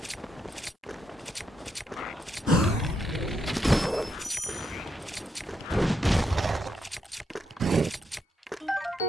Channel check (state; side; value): normal; both; correlation 0.80